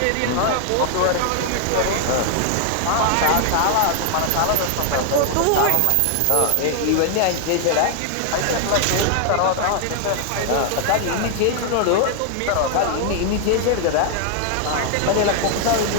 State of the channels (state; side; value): different; both; correlation 0.00